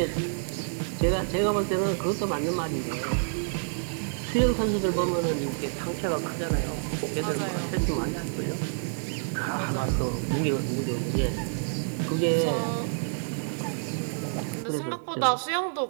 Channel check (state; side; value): silent; left; 59 dB below the other